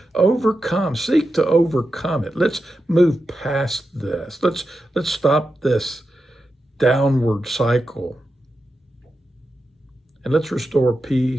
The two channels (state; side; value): normal; both; correlation 0.90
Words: seek to overcome it. Let's move past this. Let's stop this downward cycle. And let's restore